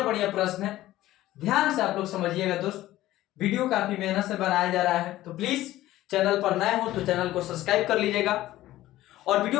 प्रश्न है, ध्यान से आप लोग समझिएगा दोस्त। वीडियो काफी मेहनत से बनाया जा रहा है, तो प्लीज चैनल पर नए हो तो चैनल को सब्सक्राइब कर लीजिएगा, और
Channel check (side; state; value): right; quieter; 15.3 dB